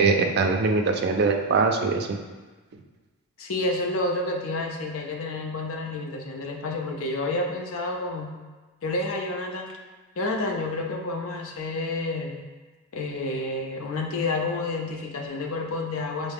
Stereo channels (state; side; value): normal; both; correlation 0.02